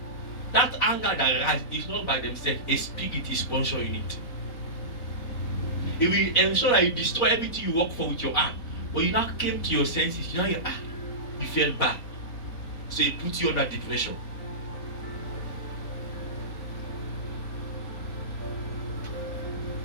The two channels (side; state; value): right; late; 4.1 ms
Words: that anger that arises is not by themselves. A spirit is sponsoring it. It will ensure that you destroy everything you work for with your hand. But you now came to your senses. You felt bad. So it puts you under depression.